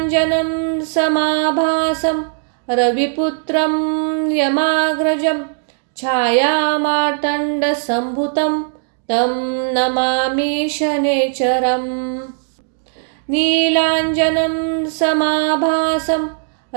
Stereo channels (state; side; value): silent; left; digital silence